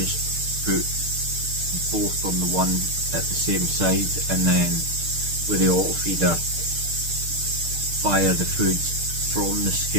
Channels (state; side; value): late; left; 6.6 ms